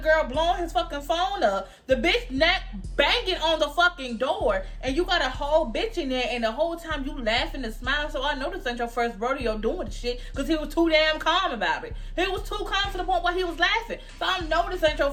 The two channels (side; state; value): both; identical; correlation 1.00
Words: blowing his fucking phone up, the bitch neck banging on the fucking door, and you got a whole bitch in there, and the whole time you laughing and smiling. So I know this ain't your first rodeo doing the shit, because he was too damn calm about it. He was too calm to the point where he was laughing. So I know this ain't your